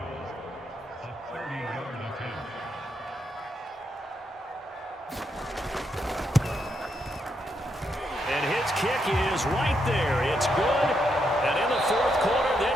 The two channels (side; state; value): both; normal; correlation 0.80